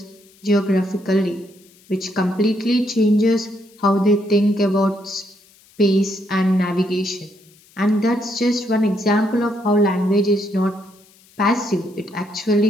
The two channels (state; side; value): noise; left; hiss, 29 dB below the sound